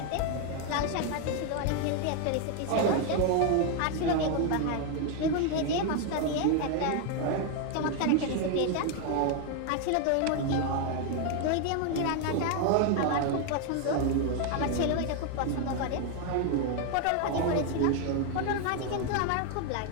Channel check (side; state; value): both; different; correlation 0.01